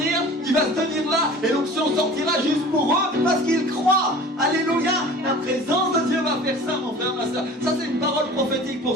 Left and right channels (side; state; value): both; normal; correlation 0.42